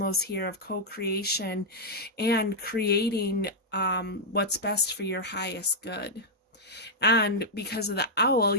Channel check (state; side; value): normal; both; correlation -0.06